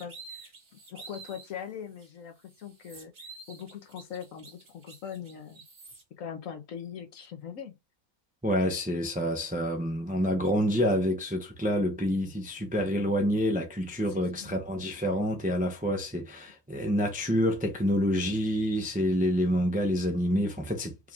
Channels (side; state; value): both; normal; correlation 0.59